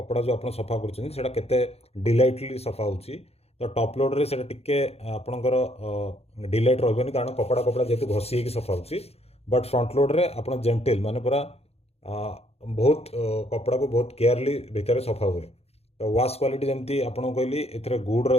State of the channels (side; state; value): right; late; 0.30 ms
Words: जो आप सफा कर डिलाइटली सफा हो। तो टॉप लोड रे से टिके आपणकर डिलाइट रही कारण कपड़ा कपड़ा जेहतु घसी होगी सफा हो। बट फ्रंट लोड रे आप जेंटिल माने पूरा बहुत कपड़ा को बहुत केयरली भितर सफा हुए। तो वाश क्वालिटी जमती आपको कहली ए गुड